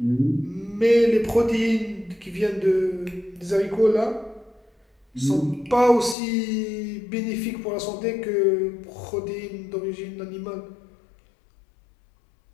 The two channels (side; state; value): right; drops out; at 6.2 s